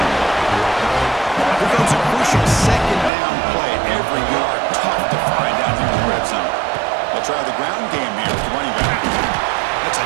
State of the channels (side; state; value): left; drops out; at 3.1 s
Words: Here comes a crucial second down play. Every yard tough to find down here in the red zone. They'll try the ground game here with the running back. That's a